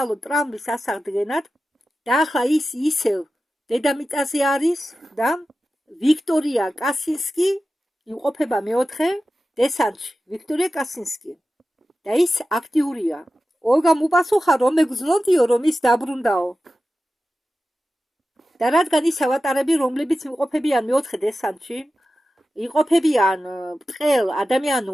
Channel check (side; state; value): both; normal; correlation 0.94